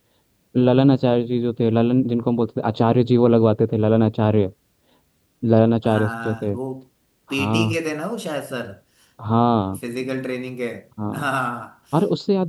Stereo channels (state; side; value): identical; both; correlation 1.00